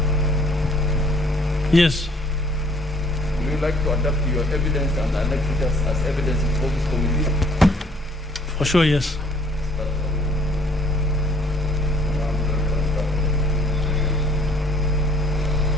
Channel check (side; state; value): both; normal; correlation 0.59